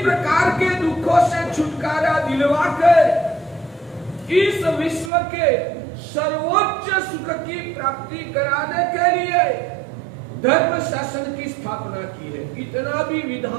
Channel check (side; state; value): left; drops out; at 5.1 s